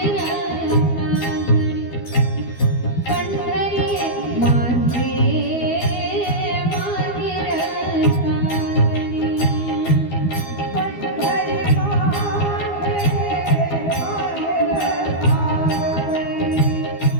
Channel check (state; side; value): late; right; 12 ms